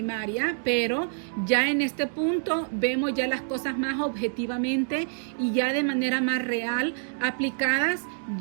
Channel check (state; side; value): silent; left; digital silence